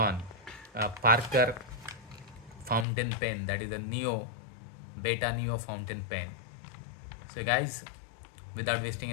a Parker fountain pen, that is a Neo Beta Neo fountain pen. So guys, without wasting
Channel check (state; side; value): drops out; right; at 2.9 s